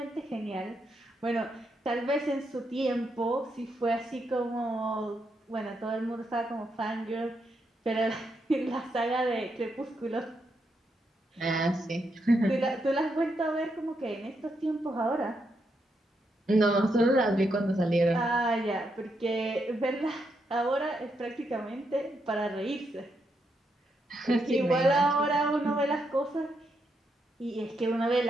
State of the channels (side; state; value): both; normal; correlation 0.81